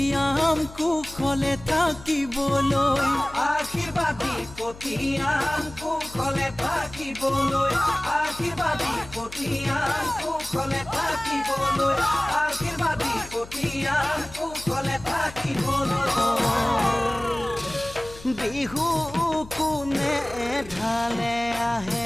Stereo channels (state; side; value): noise; left; hum, 17 dB below the sound